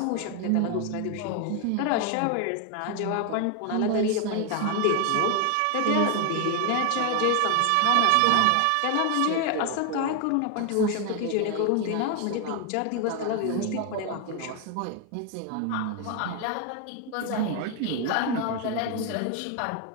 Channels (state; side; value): different; both; correlation 0.01